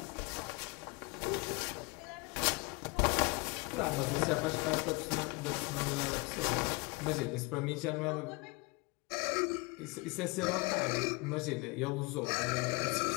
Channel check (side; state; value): right; quieter; 27.1 dB